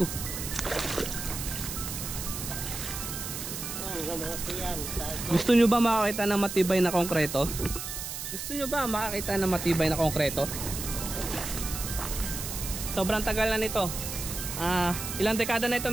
Gusto nyo ba makakita ng matibay na konkreto? Gusto nyo ba makakita ng matibay na konkreto? Sobrang tagal na nito. Ilang dekada na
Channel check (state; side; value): noise; right; hiss, 6 dB below the sound